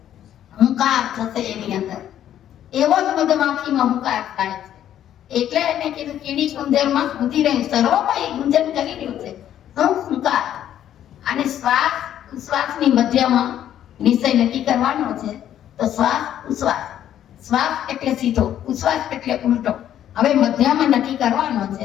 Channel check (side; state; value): right; quieter; 11.0 dB